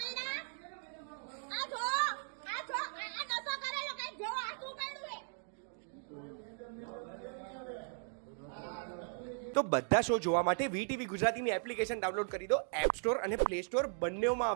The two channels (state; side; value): silent; left; 53 dB below the other